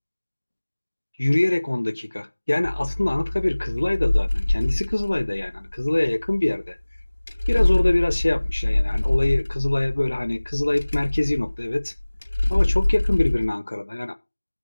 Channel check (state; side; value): inverted; both; correlation -1.00